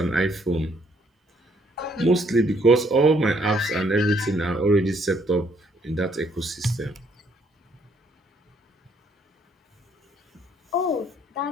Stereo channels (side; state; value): both; normal; correlation 0.67